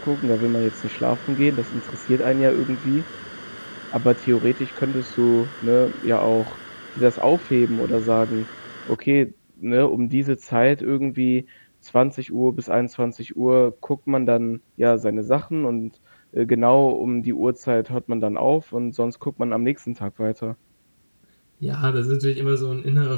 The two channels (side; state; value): both; inverted; correlation -1.00